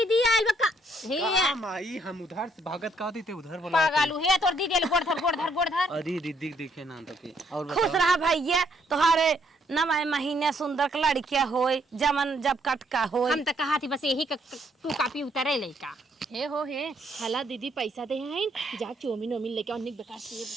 आइल बा हे माई हम उधर से भागत का थे उधर बोला पागलू हे तोर दीदी आइल गोड़ धर अरे दीदी देखे ना तके और खुश रहा भैया तोहारे नवाए महीने सुंदर के लड़किया होए जमन जब कटका होए। हम तो कहा थी बस यही तू कापी उतरे लइका हे हो हे हला दीदी पैसा दे हैं जा चौमिन ओमिन लेके अनेक बेकार से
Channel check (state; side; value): normal; both; correlation 0.70